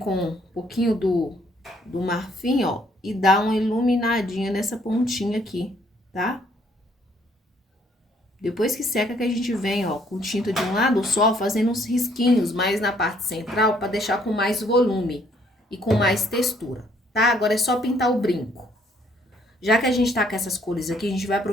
um pouquinho do marfim, ó, e dá uma iluminadinha nessa pontinha aqui, tá? Depois que seca que a gente vem, ó, com tinta de um lado só, fazendo uns risquinhos mais na parte central para deixar com mais volume e com mais textura, tá? Agora é só pintar o brinco. Já que a gente tá com essas cores aqui, a gente vai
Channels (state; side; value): normal; both; correlation 0.65